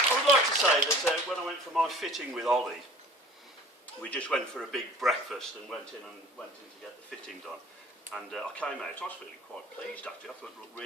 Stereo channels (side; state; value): both; normal; correlation 0.46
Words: I would like to say that when I went for my fitting with Ollie, we just went for a big breakfast and went in to get the fitting done. And I came out, I was feeling quite pleased actually, I thought it looked